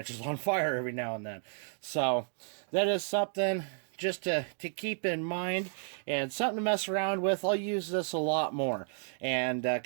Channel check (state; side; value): silent; left; 56 dB below the other